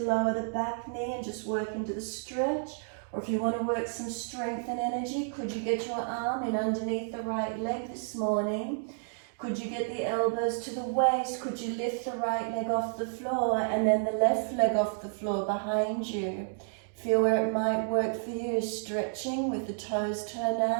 lower the back knee and just work into the stretch, or if you want to work some strength and energy, could you get your arm in underneath the right leg this morning? Could you get the elbows to the waist? Could you lift the right leg off the floor and then the left leg off the floor behind you? Feel where it might work for you, stretching with the toes turned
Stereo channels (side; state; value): left; silent; digital silence